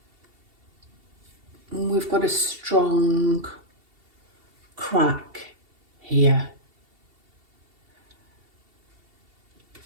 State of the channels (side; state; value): left; late; 2.7 ms